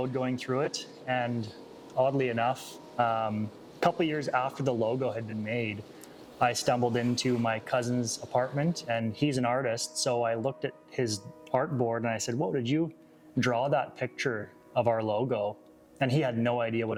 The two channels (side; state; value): both; identical; correlation 1.00